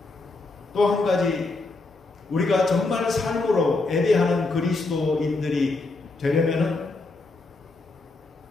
또 한 가지, 우리가 정말 삶으로 예배하는 그리스도인들이 되려면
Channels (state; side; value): quieter; right; 3.4 dB